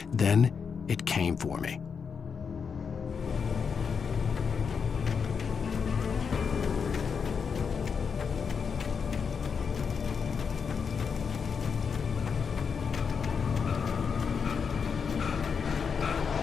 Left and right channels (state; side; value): quieter; right; 6.1 dB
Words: Then, it came for me.